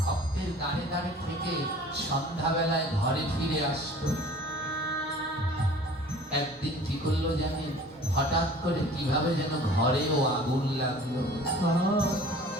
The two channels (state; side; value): normal; both; correlation 0.47